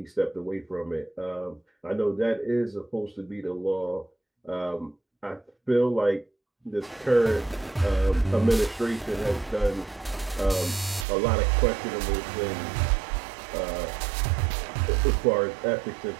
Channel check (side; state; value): left; drops out; at 11.1 s